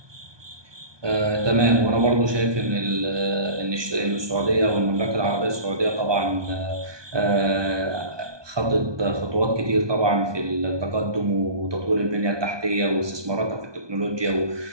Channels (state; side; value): late; left; 1.2 ms